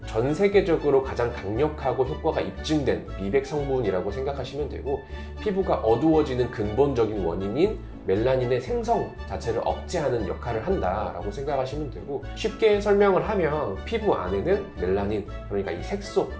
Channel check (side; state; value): both; identical; correlation 1.00